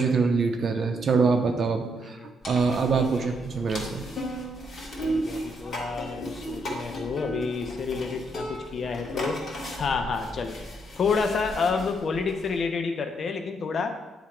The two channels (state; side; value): normal; both; correlation 0.74